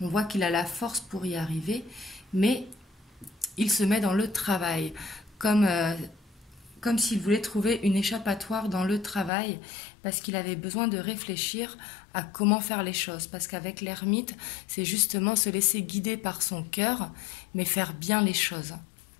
On voit qu'il a la force pour y arriver, mais il se met dans le travail, comme s'il voulait trouver une échappatoire dans le travail, parce qu'il avait besoin de réfléchir à comment faire les choses. Parce qu'avec l'ermite, c'est justement se laisser guider par son cœur, mais faire bien les choses.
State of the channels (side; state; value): right; drops out; at 9.3 s